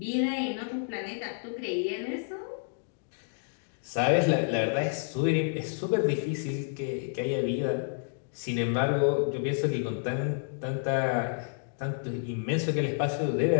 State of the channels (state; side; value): silent; right; digital silence